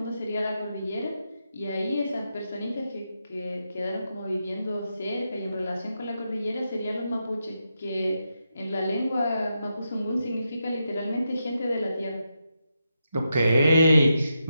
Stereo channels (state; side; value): inverted; both; correlation -0.85